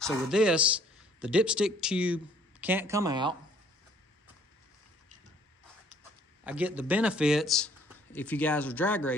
with this, the dipstick tube can't come out. I get the benefits, if you guys are drag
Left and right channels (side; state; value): both; normal; correlation 0.59